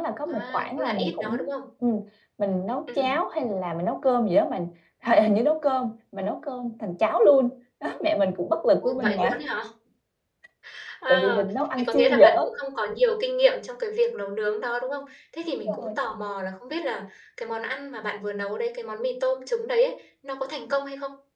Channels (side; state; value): both; identical; correlation 1.00